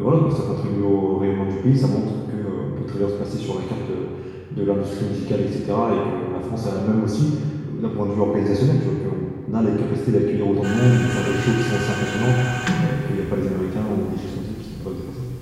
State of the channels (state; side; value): identical; both; correlation 1.00